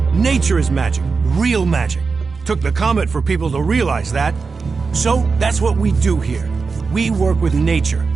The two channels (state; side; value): quieter; left; 4.7 dB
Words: Nature is magic. Real magic. Took the comet for people to realize that. So, that's what we do here. We work with nature.